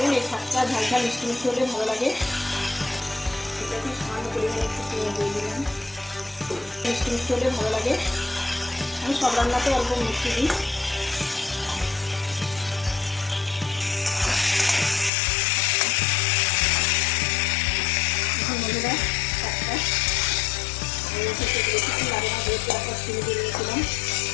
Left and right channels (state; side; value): drops out; right; at 15.1 s